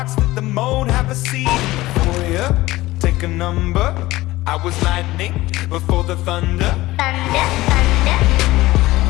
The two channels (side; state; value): right; quieter; 18.1 dB